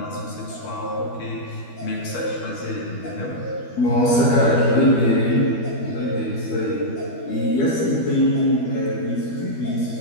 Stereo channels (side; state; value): right; late; 12 ms